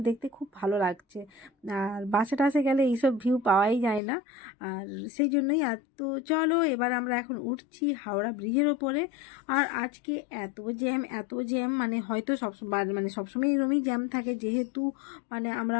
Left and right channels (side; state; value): right; drops out; at 4.0 s